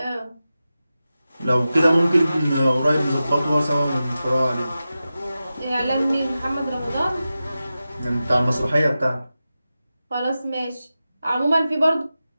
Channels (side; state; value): both; inverted; correlation -0.93